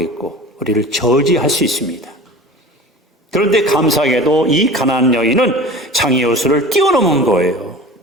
우리를 저지할 수 있습니다. 그런데 감사하게도 이 가난한 여인은 장애 요소를 뛰어넘은 거예요.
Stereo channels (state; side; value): normal; both; correlation 0.38